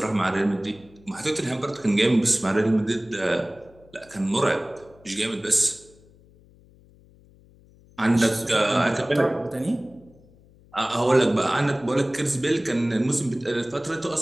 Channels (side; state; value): left; noise; hum, 27 dB below the sound